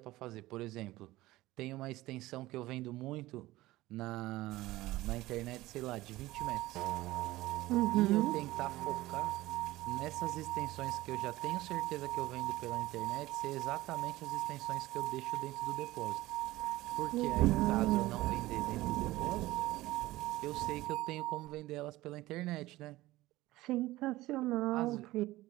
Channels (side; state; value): left; quieter; 17.8 dB